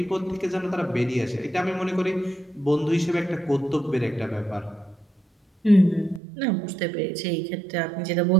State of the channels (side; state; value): left; drops out; at 6.2 s